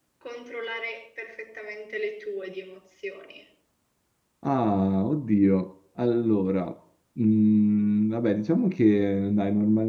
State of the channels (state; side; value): identical; both; correlation 1.00